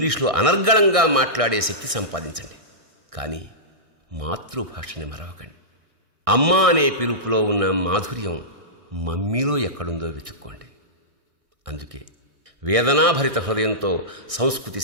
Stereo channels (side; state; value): left; late; 1.6 ms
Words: అనర్గళంగా మాట్లాడే శక్తి సంపాదించండి. కానీ మాతృభాషని మరవకండి. అమ్మ అనే పిలుపులో ఉన్న మాధుర్యం మమ్మీలో ఎక్కడుందో వెతుక్కోండి. అందుకే వేదనాభరిత హృదయంతో సంస్కృతి